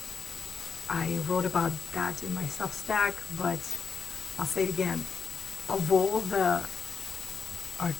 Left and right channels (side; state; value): right; quieter; 5.8 dB